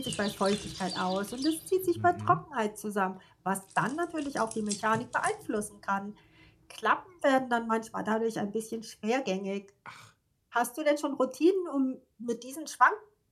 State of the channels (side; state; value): both; identical; correlation 1.00